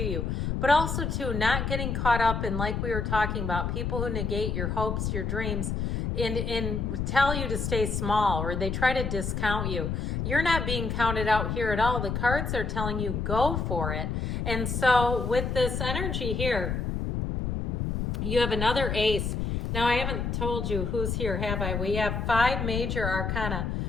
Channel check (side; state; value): left; noise; rumble, 1 dB below the sound